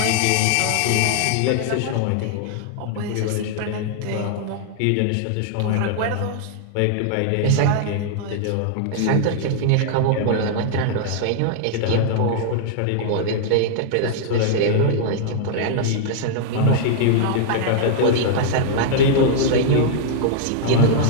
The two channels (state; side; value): different; both; correlation -0.01